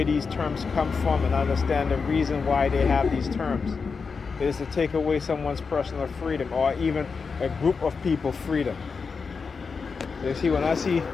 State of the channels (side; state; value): right; quieter; 5.1 dB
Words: these terms come from and understand the reason why they have these terms. It is to take away someone's personal freedom, or even a group of people freedom. You see, when I see